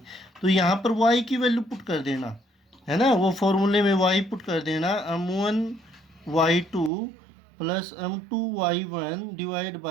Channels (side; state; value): left; drops out; at 6.9 s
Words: तो यहाँ पर y की वैल्यू पुट कर देना है ना, वो फॉर्मूले में y पुट कर देना, M1 y2 plus M2 y1 divide